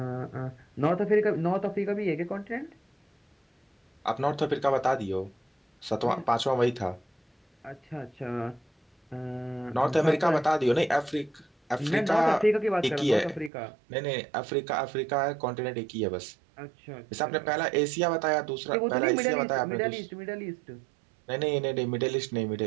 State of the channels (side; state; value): left; drops out; at 13.5 s